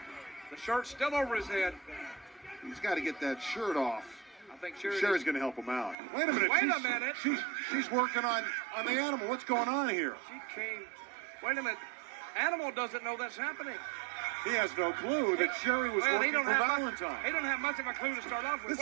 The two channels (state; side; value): drops out; left; at 6.0 s